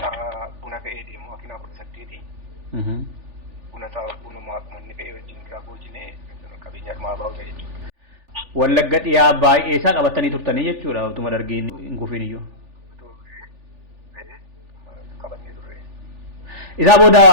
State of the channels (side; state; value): left; late; 3.4 ms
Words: buna fe'ee deemu makiinaa 18. Bunuma uummanni fe'ee wajjin irraa boojine qabeenya dhumaa baa'u ta'e jechuudha. Wallagga dhiyaa baay'ee isaa qabatanii turtanii jechuudha utuma Dargiin hin kufiin iyyuu. Qabatee turre. Isaa booda